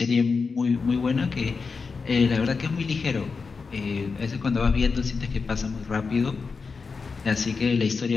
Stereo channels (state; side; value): quieter; right; 4.8 dB